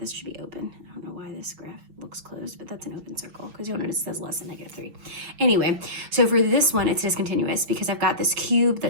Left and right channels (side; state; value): left; late; 5.9 ms